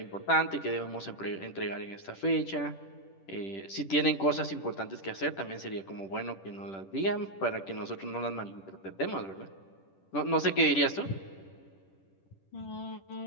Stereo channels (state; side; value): late; right; 10 ms